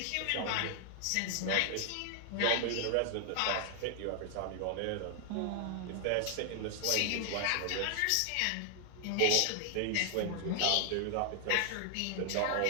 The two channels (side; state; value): both; different; correlation 0.00